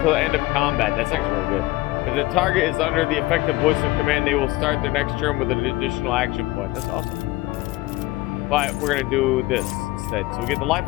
the end of combat. That's actually really good. If the target is under the effective voice of command, they will start their next turn with an additional action point. That's awesome. But we're gonna do this instead. So we get the Life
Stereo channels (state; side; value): quieter; right; 19.2 dB